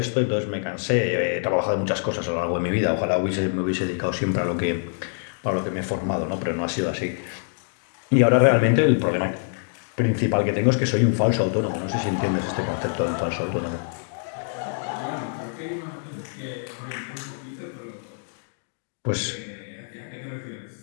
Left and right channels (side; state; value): right; silent; digital silence